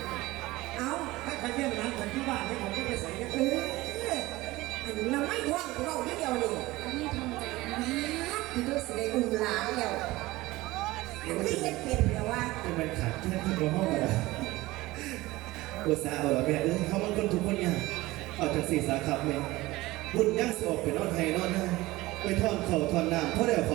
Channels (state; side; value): quieter; left; 19.2 dB